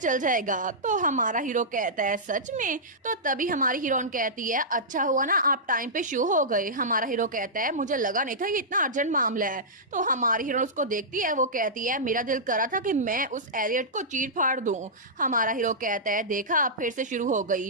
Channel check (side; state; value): both; normal; correlation -0.14